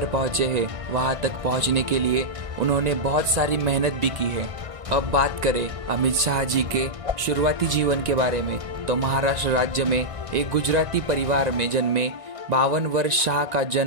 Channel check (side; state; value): left; late; 1.9 ms